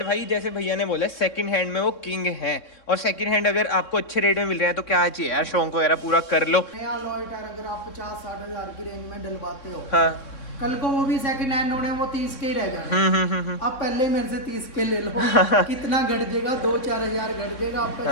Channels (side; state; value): right; late; 3.6 ms